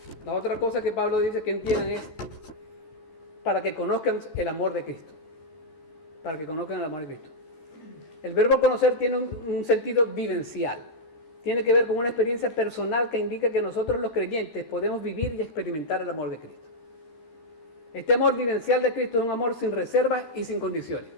La otra cosa que Pablo dice que entiendan es para que conozcan el amor de Cristo. Para que conozcan el amor de Cristo. El verbo conocer tiene un sentido vivencial. Tiene que ver con una experiencia personal que indica que nosotros los creyentes podemos vivir y experimentar el amor de Cristo. Este amor vivencial de Cristo es un amor sin reservas y sin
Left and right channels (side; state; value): right; late; 13 ms